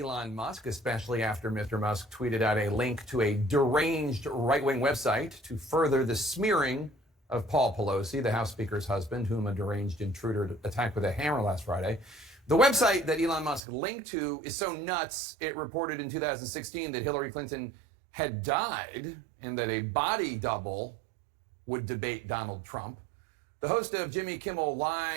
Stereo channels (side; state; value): left; drops out; at 13.6 s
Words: Musk, especially after Mr. Musk tweeted out a link to a deranged right-wing website to further the smearing of Paul Pelosi, the House Speaker's husband, whom a deranged intruder attacked with a hammer last Friday. The website that Elon Musk linked to is so nuts, it reported in 2016 that Hillary Clinton had died and that a body double would debate Donald Trump. The host of Jimmy Kimmel